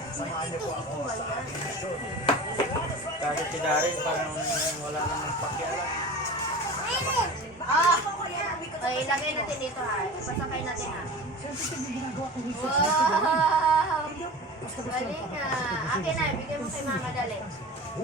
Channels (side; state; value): both; normal; correlation 0.35